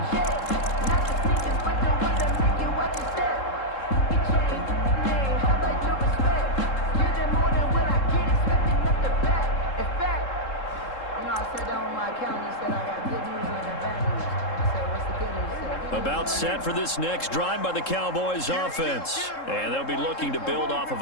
About set for this next drive by the Cowboys offense. And they'll be looking to build off of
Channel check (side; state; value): right; late; 3.7 ms